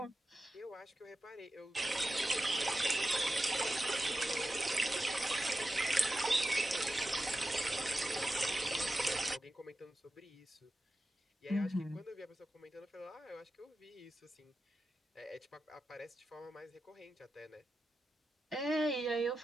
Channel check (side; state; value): both; normal; correlation 0.91